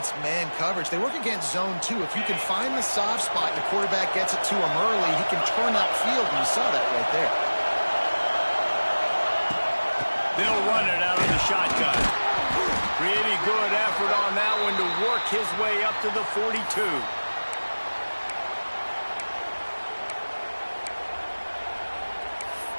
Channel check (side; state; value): both; inverted; correlation -1.00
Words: man coverage, they work against zone too. If you can find the soft spot and the quarterback gets it to him early, he can turn upfield, and you saw that right there. They'll run it out of the shotgun. Pretty good effort on that one to work his way up to the 42.